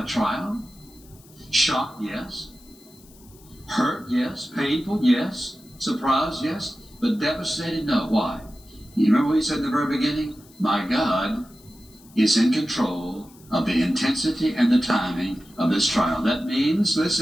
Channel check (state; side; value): noise; left; hiss, 26 dB below the sound